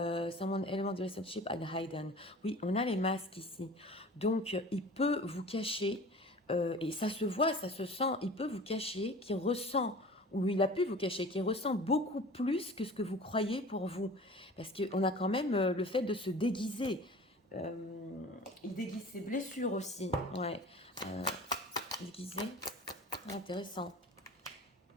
element the relationship at hidden. Oui, on a les masques ici. Donc, il peut vous cacher, et ça se voit, ça se sent, il peut vous cacher qu'il ressent, ou il a pu vous cacher, qu'il ressent beaucoup plus que ce que vous croyez pour vous. Parce qu'on a quand même le fait de se déguiser. Il déguise ses blessures aussi. Ouais. Déguisé. Intéressant.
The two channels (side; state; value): both; normal; correlation 0.41